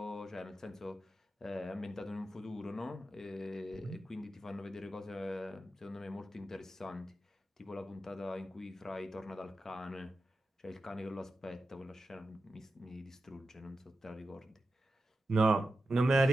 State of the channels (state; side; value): normal; both; correlation 0.91